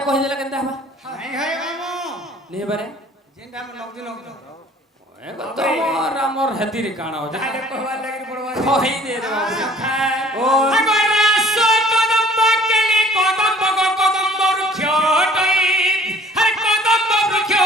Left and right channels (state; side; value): normal; both; correlation 0.52